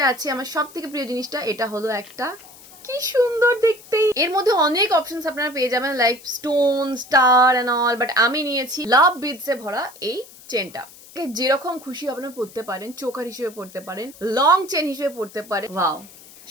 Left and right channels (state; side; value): noise; left; hiss, 21 dB below the sound